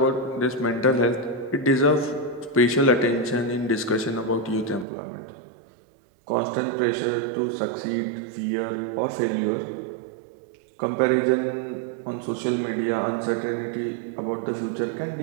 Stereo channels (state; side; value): drops out; left; at 4.9 s